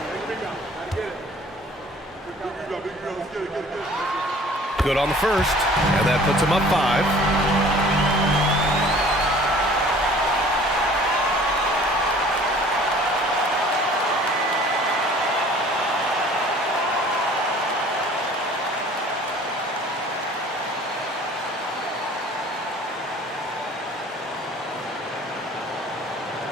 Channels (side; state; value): both; normal; correlation 0.50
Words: Good on the first, and that puts him up 5.